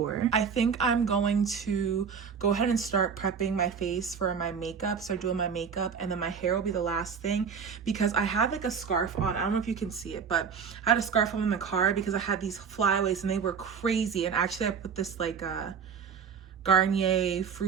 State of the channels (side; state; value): left; quieter; 6.4 dB